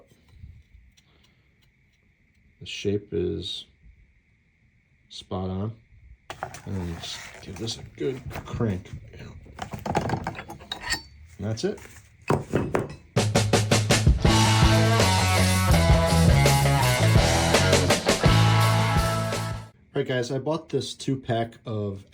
The shape is spot on. And then just give this a good crank. And that's it. Alright guys, I bought this 2-pack of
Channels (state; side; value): identical; both; correlation 1.00